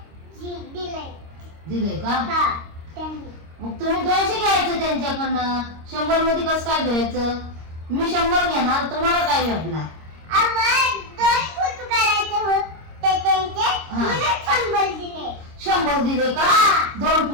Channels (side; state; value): left; late; 26 ms